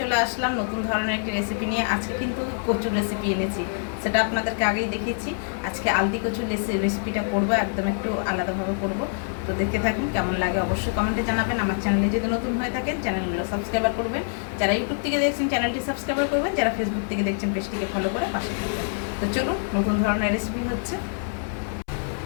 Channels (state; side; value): silent; right; 62 dB below the other